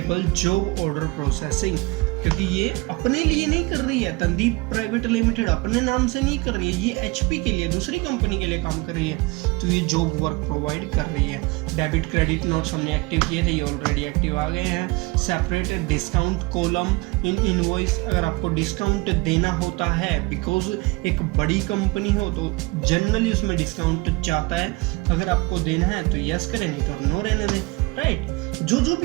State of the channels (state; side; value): quieter; left; 24.1 dB